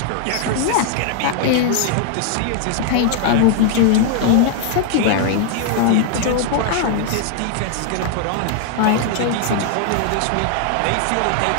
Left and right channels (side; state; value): both; different; correlation 0.00